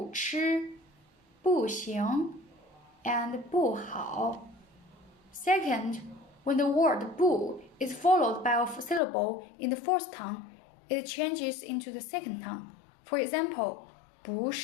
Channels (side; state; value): right; drops out; at 9.0 s